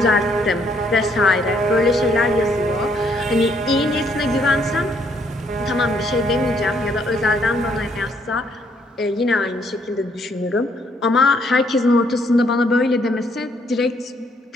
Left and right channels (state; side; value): normal; both; correlation 0.69